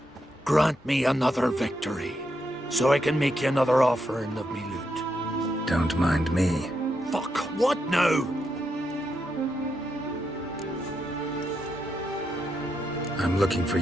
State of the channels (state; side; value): normal; both; correlation 0.82